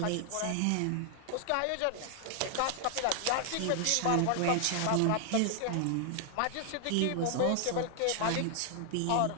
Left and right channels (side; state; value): both; different; correlation 0.00